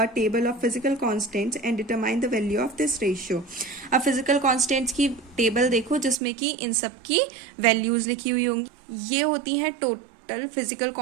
table of physical constants and determine the value of this ratio. अब फिजिकल कांस्टेंट्स की टेबल देखो जिसमें कि इन सब की वैल्यूज लिखी हुई होंगी। ये होती हैं टोटल फिजिकल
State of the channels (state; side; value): drops out; left; at 6.2 s